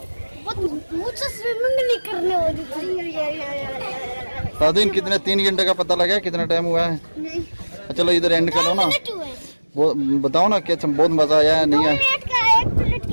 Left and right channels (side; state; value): both; inverted; correlation -1.00